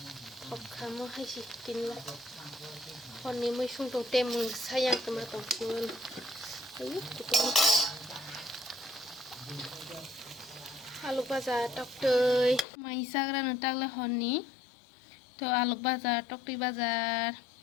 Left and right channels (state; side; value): drops out; right; at 12.7 s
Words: thok khamo haisi tinla honni moi sung tong temung sayang kema tong kun ayu kutong alu baza toktoi mai sagra no takle honni to alu baza tokti bazar